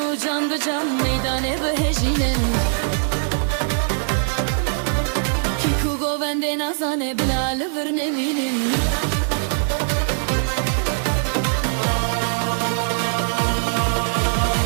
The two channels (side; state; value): left; silent; digital silence